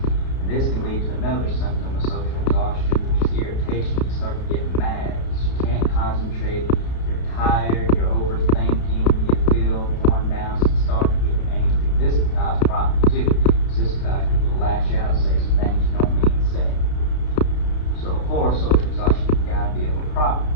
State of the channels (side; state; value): right; late; 32 ms